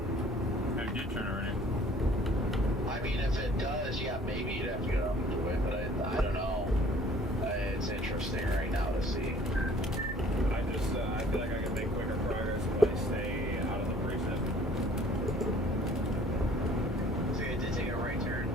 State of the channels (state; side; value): normal; both; correlation 0.54